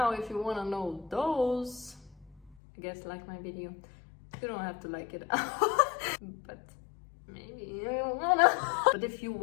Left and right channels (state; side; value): drops out; right; at 2.6 s